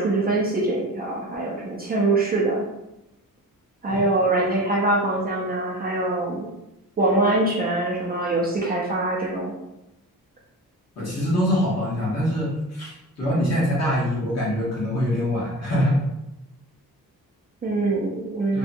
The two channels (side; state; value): both; normal; correlation 0.32